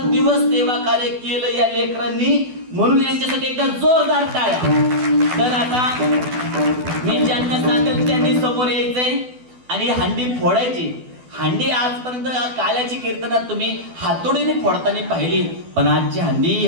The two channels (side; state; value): left; late; 12 ms